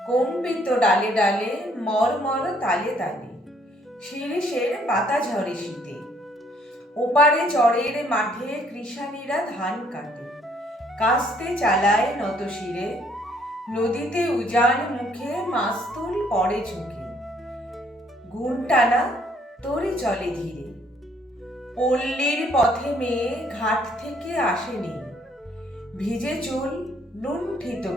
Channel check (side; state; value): both; normal; correlation 0.65